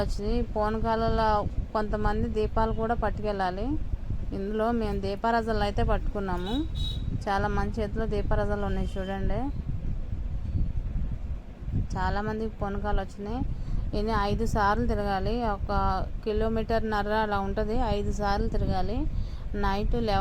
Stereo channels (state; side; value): identical; both; correlation 1.00